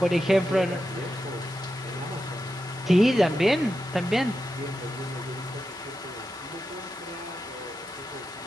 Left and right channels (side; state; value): both; normal; correlation 0.89